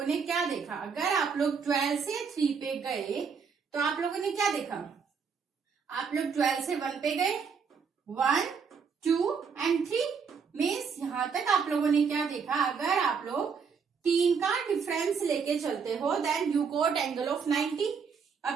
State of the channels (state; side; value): quieter; left; 6.0 dB